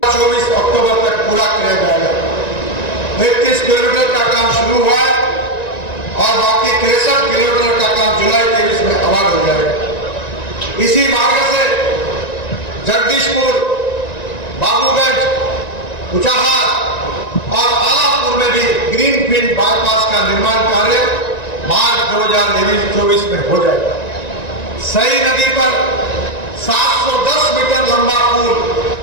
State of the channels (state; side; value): late; right; 1.9 ms